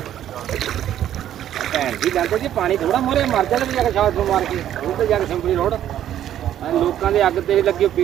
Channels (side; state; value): left; quieter; 11.3 dB